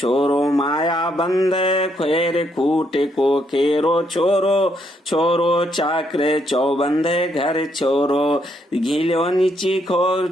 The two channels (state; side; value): normal; both; correlation 0.74